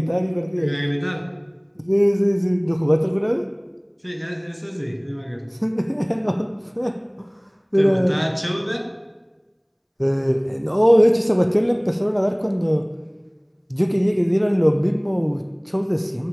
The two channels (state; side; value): identical; both; correlation 1.00